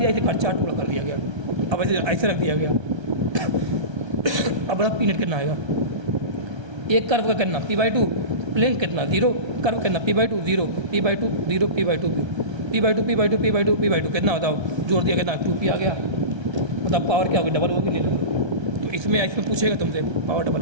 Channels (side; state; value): left; late; 1.3 ms